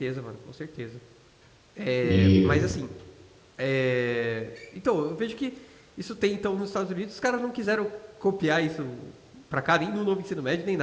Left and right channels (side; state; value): both; identical; correlation 1.00